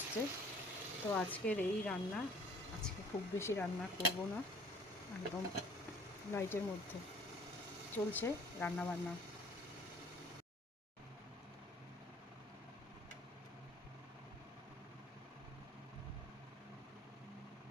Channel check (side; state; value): both; normal; correlation 0.54